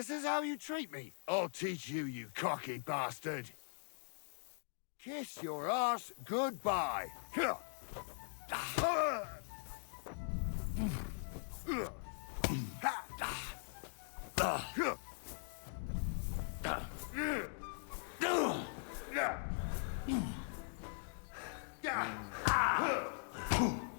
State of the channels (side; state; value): right; silent; digital silence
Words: is how you treat me. I'll teach you, you cocky bastard. Kiss your arse goodbye. Go